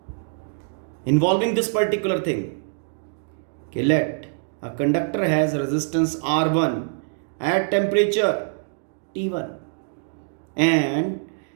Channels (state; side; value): silent; left; digital silence